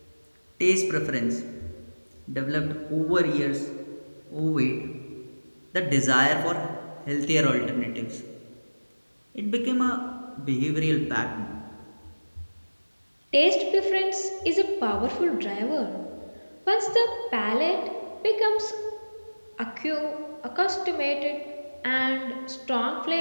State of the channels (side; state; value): both; inverted; correlation -1.00